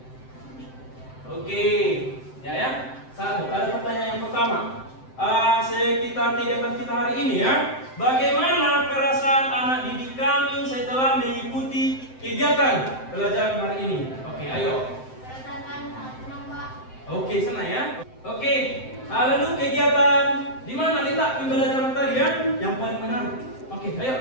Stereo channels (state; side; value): late; right; 7.7 ms